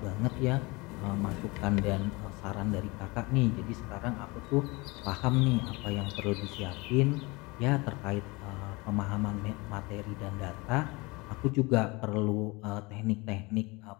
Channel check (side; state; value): right; quieter; 25.0 dB